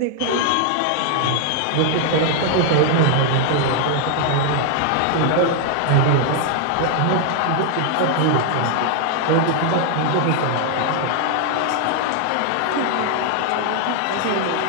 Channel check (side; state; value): both; different; correlation 0.00